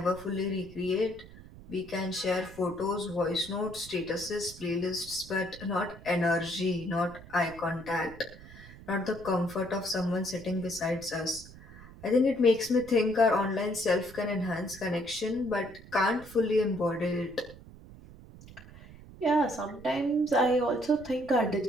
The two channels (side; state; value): right; noise; rumble, 18 dB below the sound